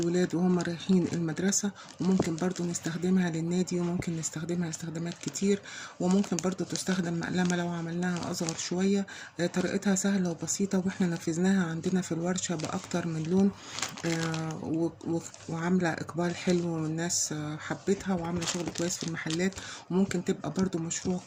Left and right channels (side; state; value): both; identical; correlation 1.00